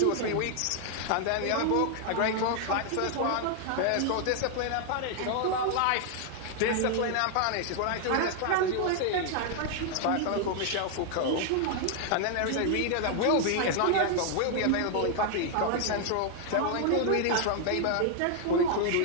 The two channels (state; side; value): different; both; correlation 0.00